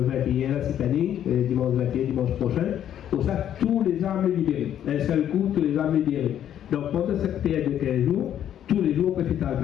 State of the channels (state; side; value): quieter; right; 10.4 dB